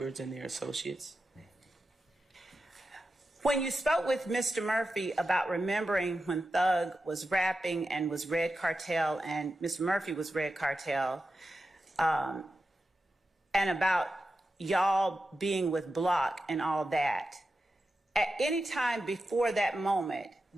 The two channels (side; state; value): both; normal; correlation 0.91